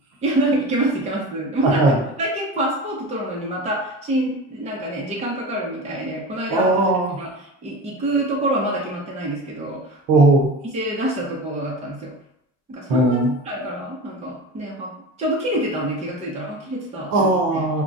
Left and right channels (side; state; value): both; normal; correlation 0.30